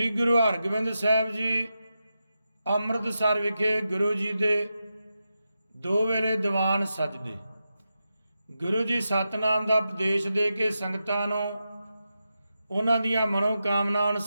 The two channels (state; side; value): inverted; both; correlation -0.89